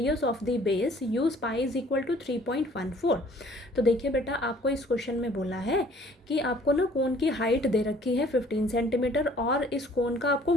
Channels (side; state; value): both; normal; correlation 0.56